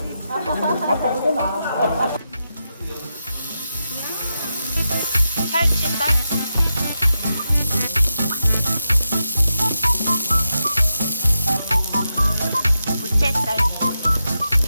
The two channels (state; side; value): inverted; both; correlation -0.87